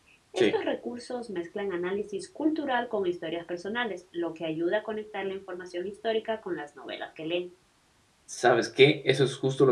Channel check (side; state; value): both; identical; correlation 1.00